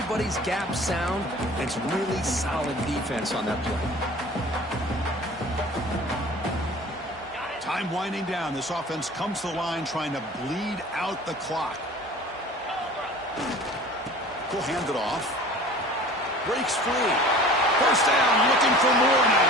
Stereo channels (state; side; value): normal; both; correlation 0.43